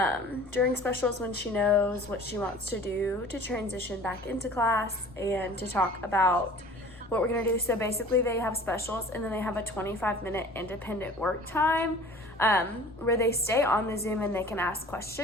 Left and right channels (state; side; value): noise; left; rumble, 25 dB below the sound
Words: during specials when she knows what she wants to do to transition back into class and to talk about what we're gonna do. So basically they have specials, and then they have a 25-minute independent work time where they stay on the Zoom and they can ask